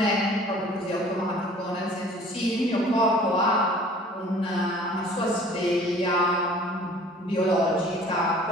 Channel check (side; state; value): both; normal; correlation 0.50